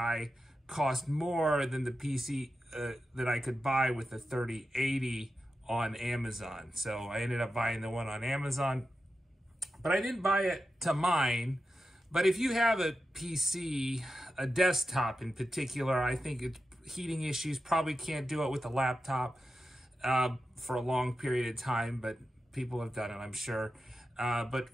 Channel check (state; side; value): normal; both; correlation 0.91